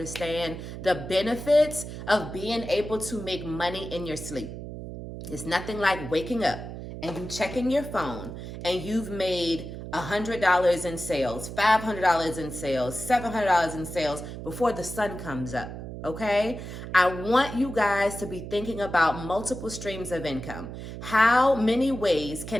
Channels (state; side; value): noise; right; hum, 9 dB below the sound